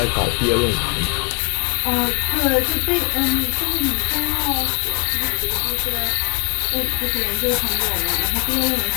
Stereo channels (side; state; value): right; quieter; 36.7 dB